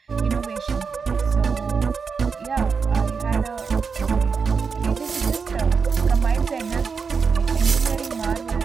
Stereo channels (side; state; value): left; quieter; 5.5 dB